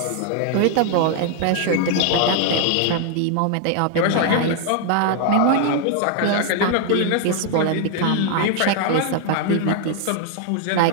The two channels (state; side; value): different; both; correlation 0.00